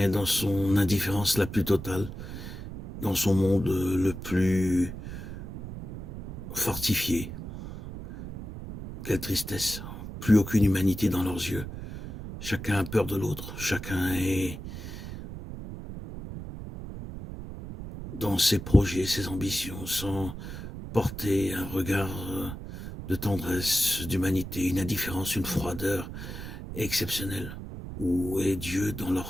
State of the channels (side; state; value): right; noise; rumble, 9 dB below the sound